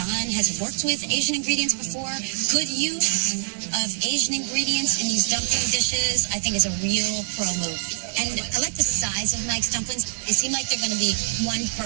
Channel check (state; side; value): silent; left; 59 dB below the other